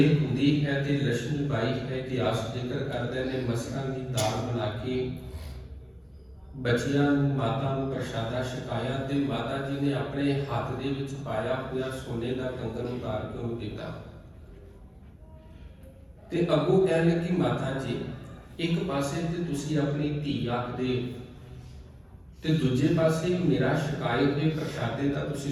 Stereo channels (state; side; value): identical; both; correlation 1.00